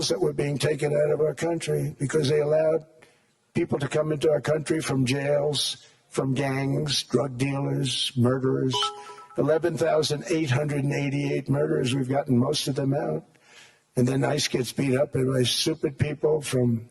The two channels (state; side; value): identical; both; correlation 1.00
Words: that were being taken out of our country because they allowed people to come into our country from jails, from gangs, drug dealers, murderers. 11,888 murderers. We've gotten most of them out. And then ICE gets beat up by stupid people from